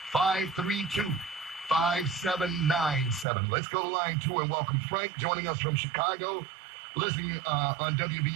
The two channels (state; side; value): drops out; left; at 3.2 s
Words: 877-532-5797. Let's go to line 2 and welcome Frank joining us from Chicago. Listening on